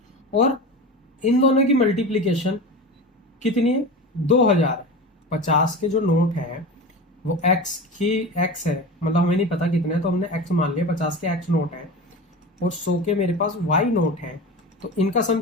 और इन दोनों की मल्टीप्लीकेशन कितनी है 2000 है। 50 के जो नोट है वो x की x है, मतलब हमें नहीं पता कितने, तो हमने x मान लिया। 50 के x नोट है और 100 के मेरे पास y नोट है। तो इनका सम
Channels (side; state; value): both; normal; correlation 0.29